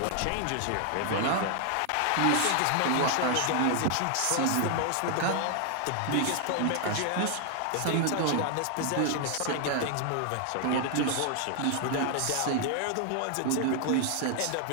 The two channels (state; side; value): different; both; correlation 0.00